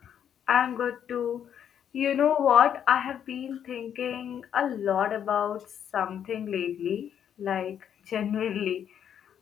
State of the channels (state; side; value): quieter; right; 9.0 dB